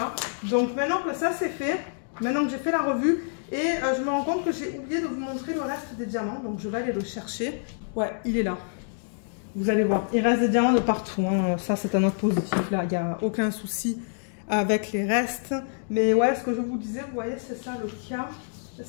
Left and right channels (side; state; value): right; silent; digital silence